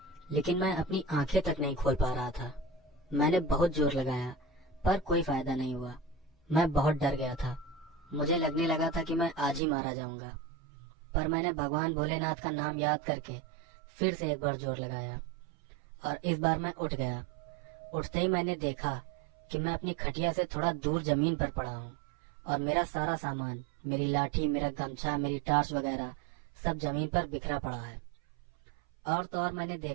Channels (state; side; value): drops out; left; at 9.6 s